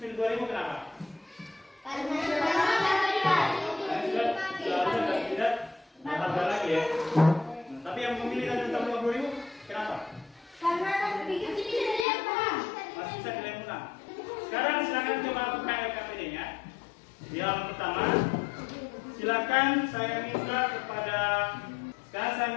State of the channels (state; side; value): drops out; right; at 12.1 s